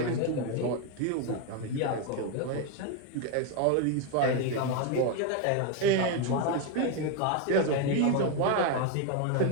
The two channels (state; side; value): different; both; correlation 0.02